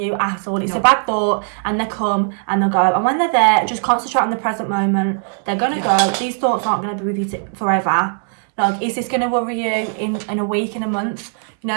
at all. It's a bad thought, and they come and they'll go. And when they're there, just concentrate on the present moment. They're going to go. These thoughts aren't going to be with you forever. Like, is this going to worry you in a week, in a month? You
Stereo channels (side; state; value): left; silent; 58 dB below the other